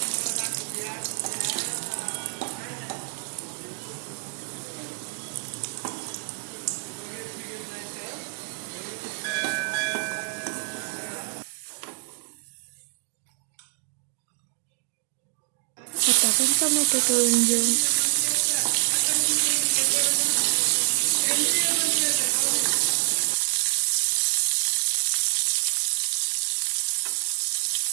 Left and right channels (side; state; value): left; silent; digital silence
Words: आता आपण टोमॅटो तळून घेऊ।